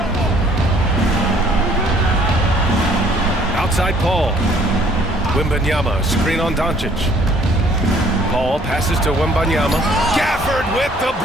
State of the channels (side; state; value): both; normal; correlation 0.59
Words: Outside Paul. Wembanyama, screen on Doncic. Paul passes to Wembanyama. Gafford with the